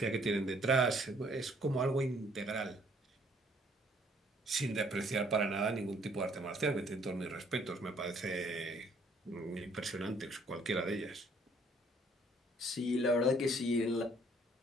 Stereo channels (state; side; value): normal; both; correlation 0.63